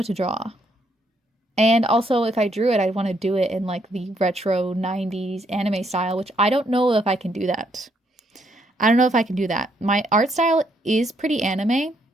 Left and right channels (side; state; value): both; normal; correlation 0.73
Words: And also, if I drew it, I'd want to do it in like the retro 90s anime style, which I don't know if I can do that. My art style is pretty anime.